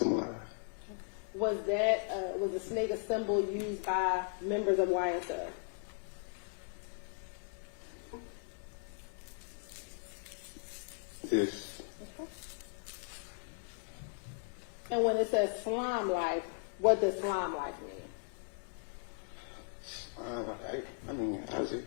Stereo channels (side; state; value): right; quieter; 38.3 dB